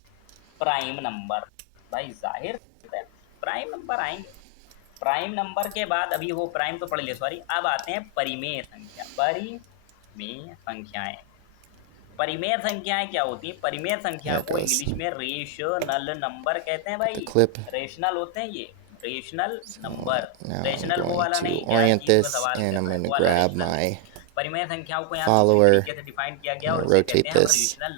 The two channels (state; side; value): different; both; correlation 0.00